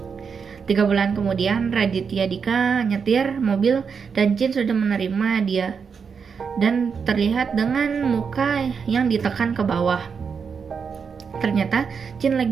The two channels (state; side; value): quieter; left; 6.1 dB